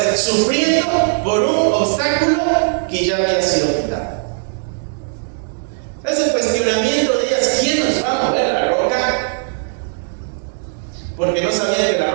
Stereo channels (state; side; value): silent; left; digital silence